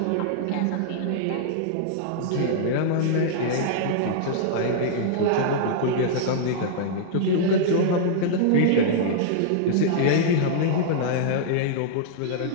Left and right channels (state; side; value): different; both; correlation -0.01